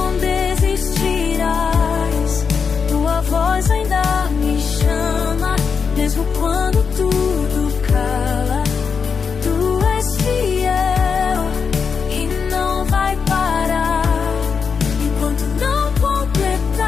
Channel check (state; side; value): quieter; right; 5.9 dB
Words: desistirás. Tua voz ainda me chama, mesmo quando tudo cala. Tu és fiel e não vai parar enquanto não